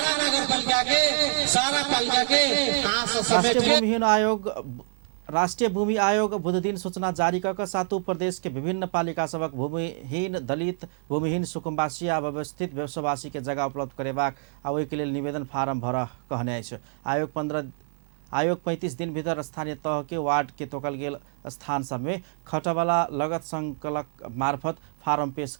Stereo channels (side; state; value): left; silent; digital silence